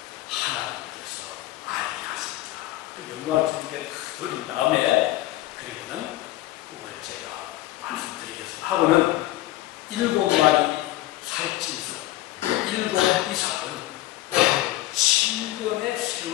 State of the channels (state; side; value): quieter; right; 16.2 dB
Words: 하나님께서 알게 하십니다. 또 영광을 주님께 드린 다음에 그리고는 꿈을 제가 말씀드리겠습니다. 하고는 7마리 살찐소, 7 이삭은 7년의